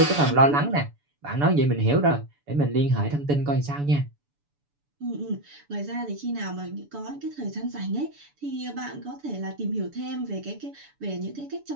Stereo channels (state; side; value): late; left; 6.9 ms